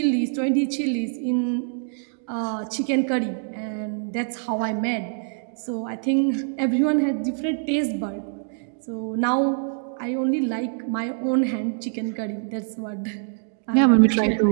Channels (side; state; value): left; silent; digital silence